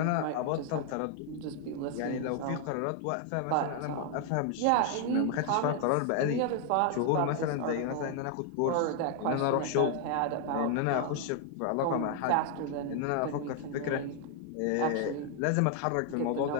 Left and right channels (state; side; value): different; both; correlation 0.00